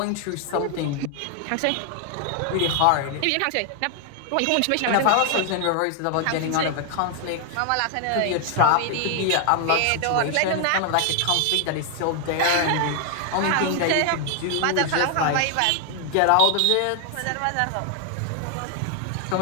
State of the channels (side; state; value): both; different; correlation 0.00